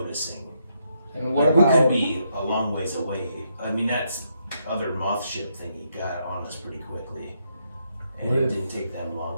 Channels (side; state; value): both; inverted; correlation -0.78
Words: And what Like, about we could be a long ways away. I mean, that's other moth ship thingy got on us pretty quickly, and What it if- didn't take them